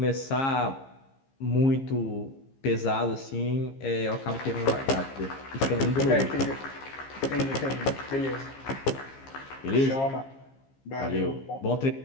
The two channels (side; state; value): right; late; 15 ms